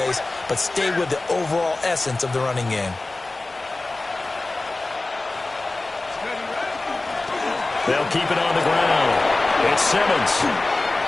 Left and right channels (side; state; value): right; quieter; 3.1 dB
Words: but stay with the overall essence of the running game. They'll keep it on the ground. It's Simmons.